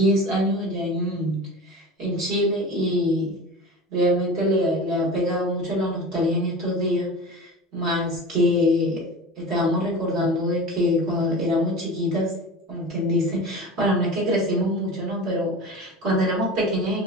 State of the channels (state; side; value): normal; both; correlation 0.33